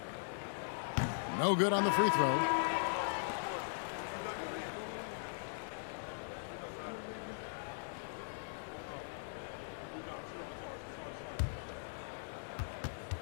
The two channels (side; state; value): right; silent; digital silence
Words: No good on the free throw.